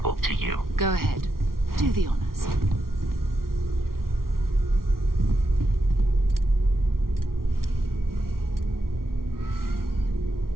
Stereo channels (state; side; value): late; left; 0.93 ms